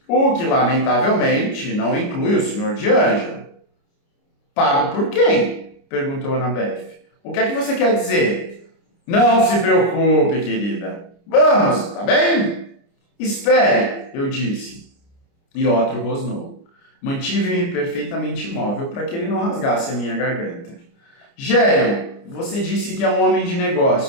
o que, lamentavelmente, não inclui o Sr. D'Angelo. Pago por quem? Perguntou Annabeth. O que é que você quer dizer? Não se preocupe, querida. Vamos, tá bem? Espere, eu disse. E Otro rosnou. Mantive-me perfeitamente imóvel para que ele não rasgasse a minha garganta. Gerion, você disse que é um homem de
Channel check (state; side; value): late; right; 29 ms